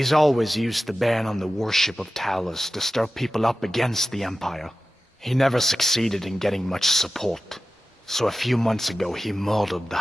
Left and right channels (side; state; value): both; normal; correlation 0.94